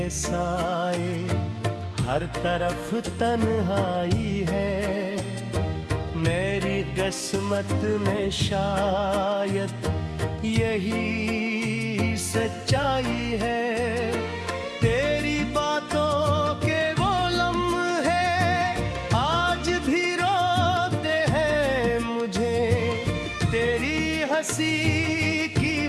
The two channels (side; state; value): both; identical; correlation 1.00